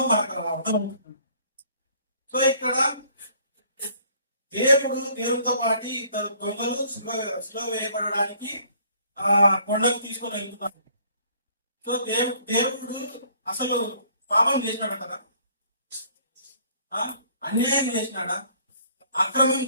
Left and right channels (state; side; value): inverted; both; correlation -0.59